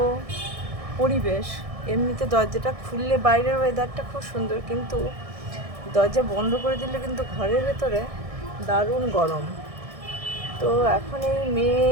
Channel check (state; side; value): late; left; 1.6 ms